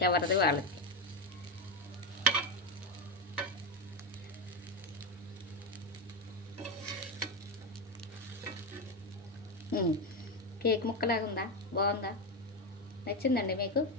ఎవరిది వాళ్ళకి. కేక్ ముక్కలాగా ఉందా? బాగుందా? నచ్చిందండి మీకు?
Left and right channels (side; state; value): both; normal; correlation 0.11